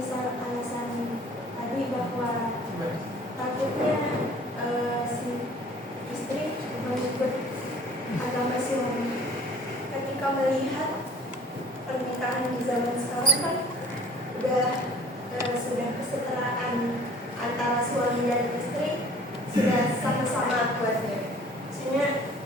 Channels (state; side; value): normal; both; correlation 0.50